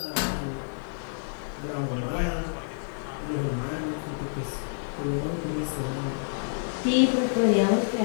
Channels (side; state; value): right; silent; digital silence